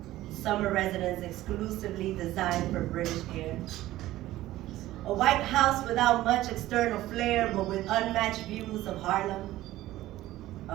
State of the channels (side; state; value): left; quieter; 15.6 dB